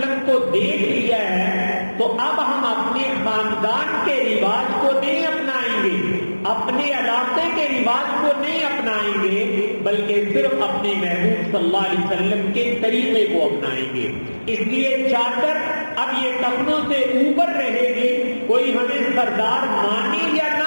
کو دیکھ لیا ہے تو اب ہم اپنے خاندان کے رواج کو نہیں اپنائیں گے، اپنے علاقے کے رواج کو نہیں اپنائیں گے، بلکہ صرف اپنے محبوب صلی اللہ علیہ وسلم کے طریقے کو اپنائیں گے. اس لیے چادر اب یہ ٹخنوں سے اوپر رہے گی، کوئی ہمیں سردار مانے یا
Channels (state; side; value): inverted; both; correlation -1.00